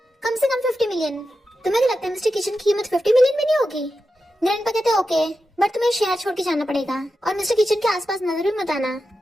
कम से कम 50 मिलियन। तुम्हें क्या लगता है मिस्टर किचन की कीमत 50 मिलियन में नहीं होगी। ग्रैंडपा कहते हैं ओके बट तुम्हें शहर छोड़ के जाना पड़ेगा और मिस्टर किचन के आसपास नजर भी मत आना।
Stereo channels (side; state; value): both; normal; correlation 0.90